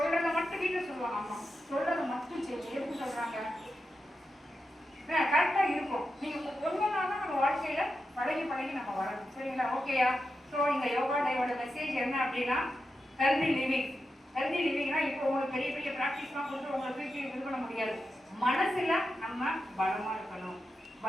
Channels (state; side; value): normal; both; correlation 0.89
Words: மட்டும் வீட்டில் சொல்லுவாங்க அம்மா, சொல்றத மட்டும் சரி எதுக்கு சொல்றாங்க கரெக்டா இருக்கும். நீங்க ஒன்றுனாலும் நம்ம வாழ்க்கையில பழகி பழகி நம்ம வரணும். சரிங்களா? ஓகேயா? ஸோ இந்த யோகா டேவோட மெசேஜ் என்ன அப்படின்னா ஹெல்தி லிவிங். ஹெல்தி லிவிங்னா இப்போ உங்களுக்கு பெரிய பெரிய ப்ராக்டிஸ்லாம் கொடுத்து உங்களை தூக்கி இது பண்ண முடியாது. மனசுல நம்ம பலமா இருக்கணும்.